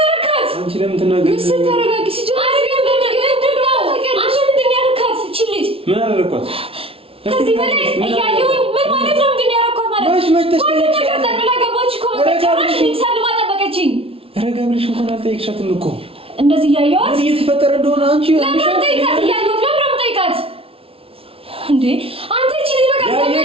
ለምን ትናገር? ምስል ተረጋጊ። ሲጀምር ምን አደረኳት? ከዚህ በላይ እያየሁኝ ምን ማለት ነው? ምንድን ነው ያደረኳት ማለት ነው? ሁሉም ነገር ጠቅላ ገባች እኮ በመጨረሻ ሰልማ ጠበቀችኝ። ረጋ ብለሽ እንኳን አልጠየቅሻትም እኮ እንደዚህ እያየኋት ምን እየተፈጠረ እንደሆነ አንቺ ለምን ጠይቃት? እያየኋት ለምን ጠይቃት እንዴ? አንተ እቺ ልጅ በቃ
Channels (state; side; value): late; left; 0.27 ms